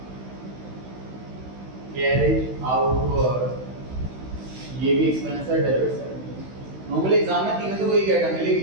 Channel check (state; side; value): late; left; 16 ms